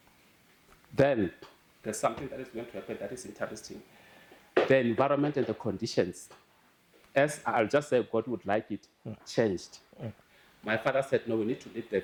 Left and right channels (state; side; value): identical; both; correlation 1.00